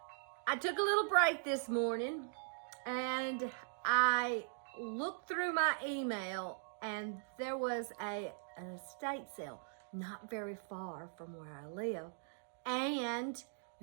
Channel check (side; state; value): left; silent; digital silence